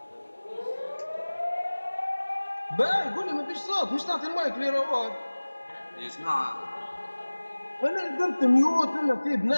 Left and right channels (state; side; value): inverted; both; correlation -1.00